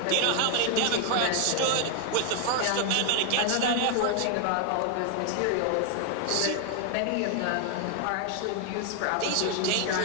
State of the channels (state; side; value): different; both; correlation 0.00